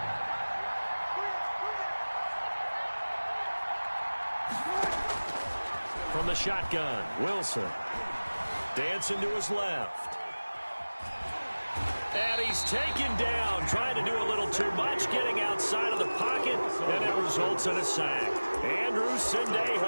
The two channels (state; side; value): inverted; both; correlation -1.00